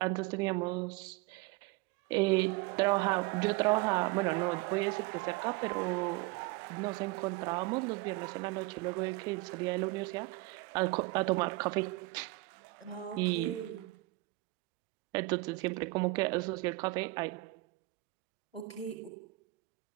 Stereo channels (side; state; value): left; quieter; 21.8 dB